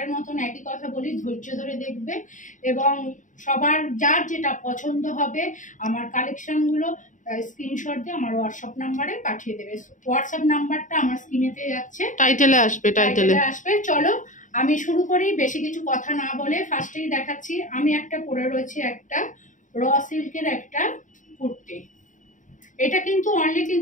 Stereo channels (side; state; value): right; late; 0.37 ms